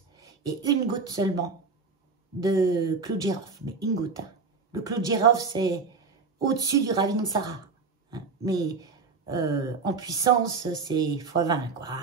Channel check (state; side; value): quieter; left; 4.7 dB